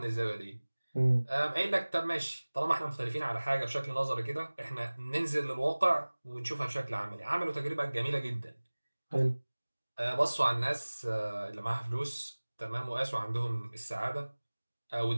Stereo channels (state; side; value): inverted; both; correlation -1.00